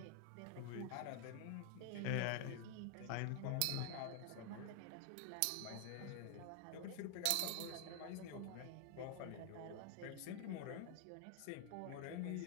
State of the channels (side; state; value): both; different; correlation 0.00